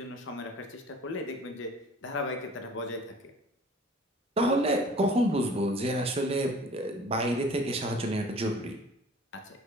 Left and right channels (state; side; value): normal; both; correlation 0.48